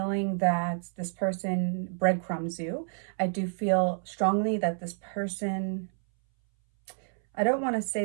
that this person breadcrumbs you. I do feel strongly that this person, I don't want to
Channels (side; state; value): left; silent; 58 dB below the other